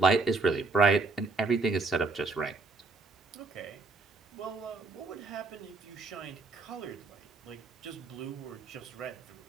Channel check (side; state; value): left; quieter; 3.7 dB